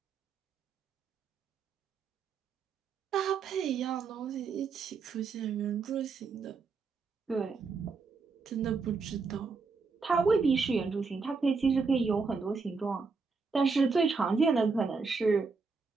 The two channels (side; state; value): left; quieter; 4.6 dB